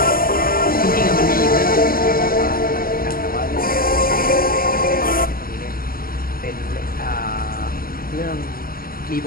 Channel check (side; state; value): right; late; 0.43 ms